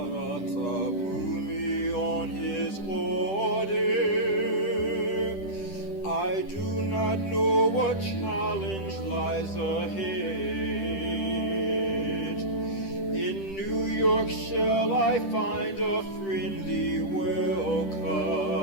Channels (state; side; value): late; right; 10 ms